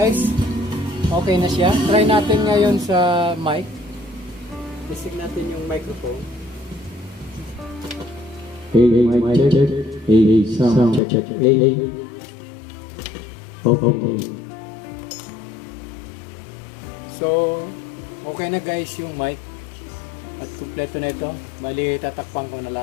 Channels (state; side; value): drops out; right; at 11.0 s